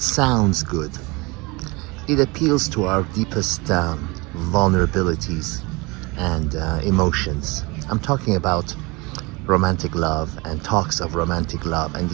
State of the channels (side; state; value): left; quieter; 25.6 dB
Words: sounds good. It appeals to our deepest vulnerabilities and emotions. I'm talking about romantic love and talks of romantic love and